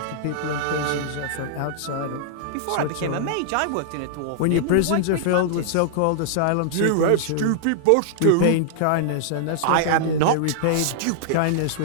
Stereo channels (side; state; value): both; different; correlation -0.01